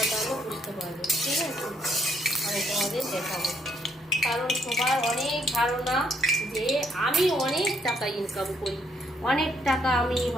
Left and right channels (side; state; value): both; normal; correlation 0.71